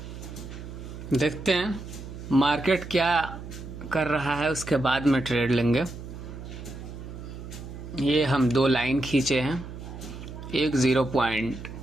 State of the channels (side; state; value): right; noise; hum, 11 dB below the sound